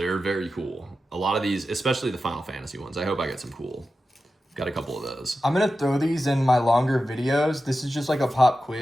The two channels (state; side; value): normal; both; correlation 0.92